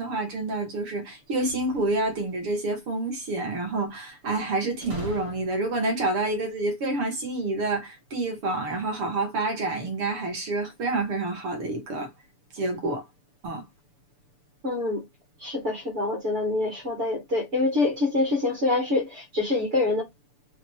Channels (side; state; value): left; late; 6.9 ms